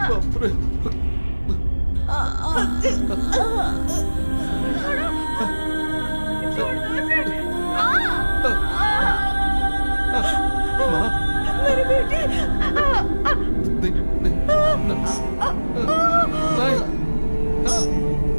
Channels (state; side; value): inverted; both; correlation -1.00